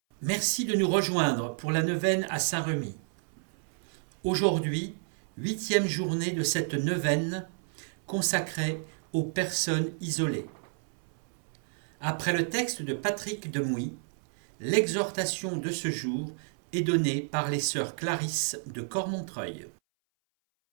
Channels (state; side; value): silent; left; 58 dB below the other